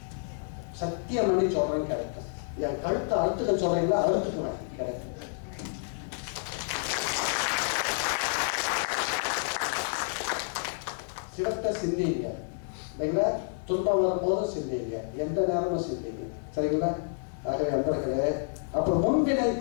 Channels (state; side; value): silent; right; digital silence